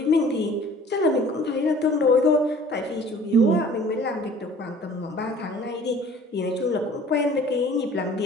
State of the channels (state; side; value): normal; both; correlation 0.50